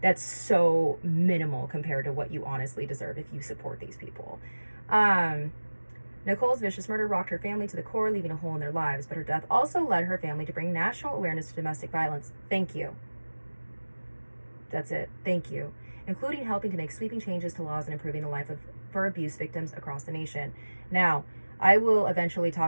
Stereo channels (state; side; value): inverted; both; correlation -1.00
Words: minimal compared to what you honestly deserve if you support these people. Nicole's vicious murder rocked her family to the core, leaving a hole in their lives, but her death also led her family to bring national awareness to domestic violence. Thank you. That's it. Thank you. Including helping to make sweeping changes to laws and improving the life for abuse victims across the nation. Now, I will eventually